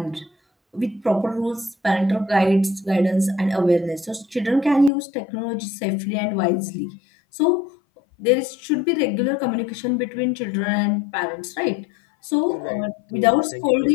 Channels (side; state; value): right; drops out; at 4.9 s